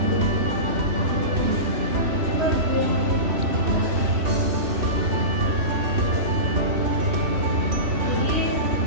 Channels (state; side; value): late; left; 3.1 ms